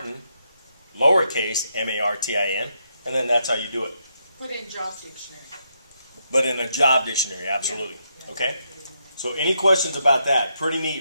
lowercase, M-A-R-T-I-N, and then that's how you do it. Put in job dictionary. But in a job dictionary, absolutely. Yeah. Okay? So any questions about that? Pretty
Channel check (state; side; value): inverted; both; correlation -0.79